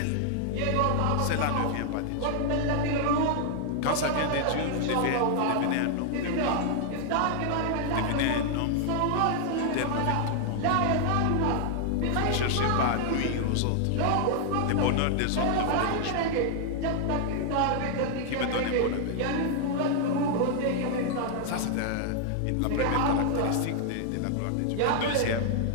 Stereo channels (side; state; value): both; different; correlation 0.00